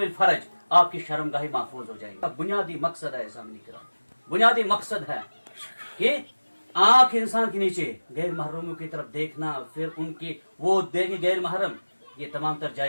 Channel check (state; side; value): inverted; both; correlation -1.00